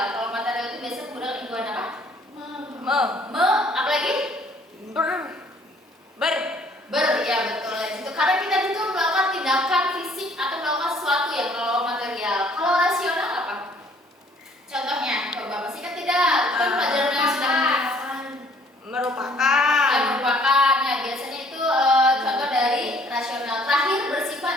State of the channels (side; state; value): both; normal; correlation 0.59